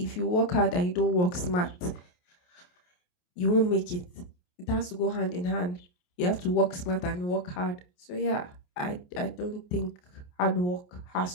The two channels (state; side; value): late; right; 28 ms